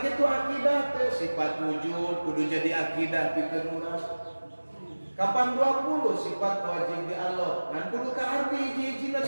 akidah teh sifat wujud kudu jadi akidah pikeun urang. Kapan 20 sifat wajib di Allah ngan kudu kaarti hiji-hijina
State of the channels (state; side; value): inverted; both; correlation -1.00